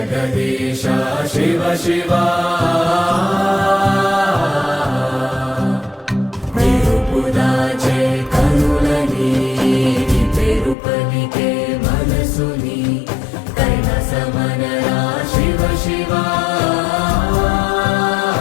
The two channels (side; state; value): right; drops out; at 10.8 s